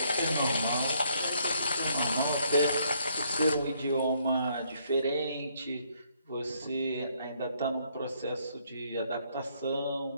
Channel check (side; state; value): both; inverted; correlation -0.69